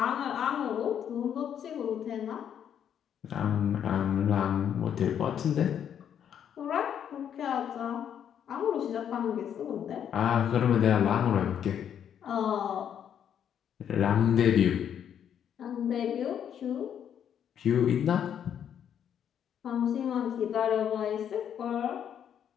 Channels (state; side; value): quieter; right; 9.0 dB